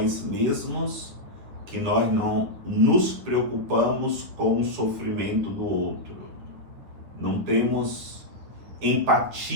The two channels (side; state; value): left; late; 9.8 ms